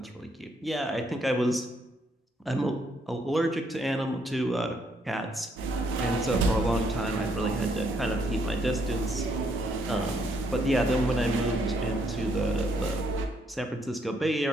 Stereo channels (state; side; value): normal; both; correlation 0.72